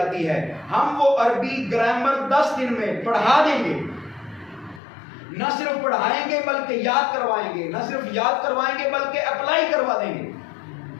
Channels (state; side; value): drops out; right; at 4.8 s